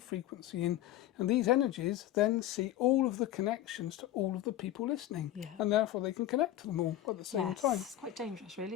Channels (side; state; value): right; quieter; 13.2 dB